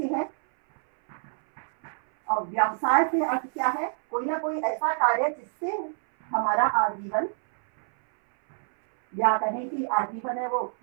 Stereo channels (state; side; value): silent; left; 58 dB below the other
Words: है। और व्यवसाय से अर्थ क्या है? कोई ना कोई ऐसा कार्य जिससे हमारा आजीवन, या कहें कि आजीवन है वो